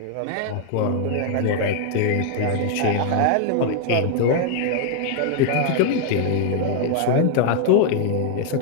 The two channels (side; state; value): both; different; correlation 0.00